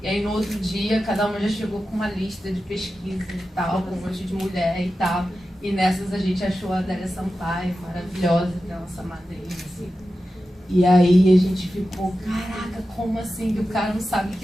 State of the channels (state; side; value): normal; both; correlation 0.92